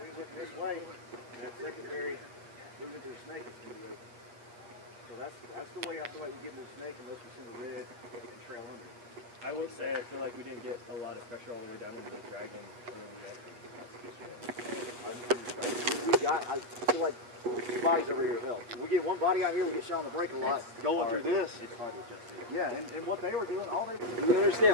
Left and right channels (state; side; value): late; left; 8.4 ms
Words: up this way, and that secondary moving to the snake is going to be open. So that's the way I feel like we get into the snake unless we send a red and trail under. I will say, I feel like we didn't get a lot of pressure all the way down into the dragon. I feel like 2 bodies over here help. We get 1 body out here, we get shot on the break a lot. Going through this. It's hard to adjust it. Yeah, and what they were doing, all they did. you